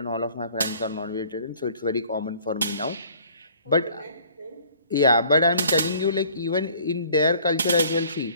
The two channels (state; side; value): inverted; both; correlation -0.55